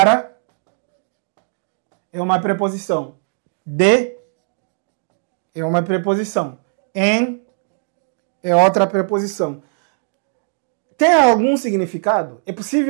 é uma preposição. De é uma preposição. Em é outra preposição. Tem algum significado? É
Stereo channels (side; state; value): left; silent; digital silence